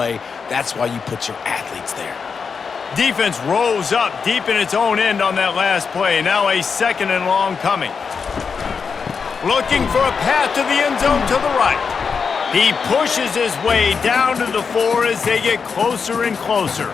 That's why you put your athletes there. Defense rose up deep in its own end on that last play. Now a 2nd and long coming. Looking for a path to the end zone to the right. He pushes his way down to the 4 as they get closer and closer.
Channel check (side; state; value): right; quieter; 5.7 dB